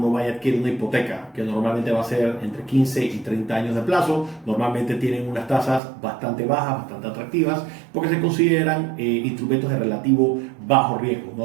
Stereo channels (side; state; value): left; drops out; at 5.8 s